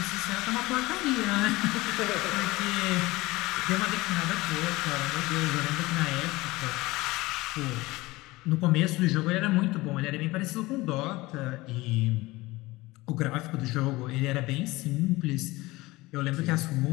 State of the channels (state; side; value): quieter; right; 20.5 dB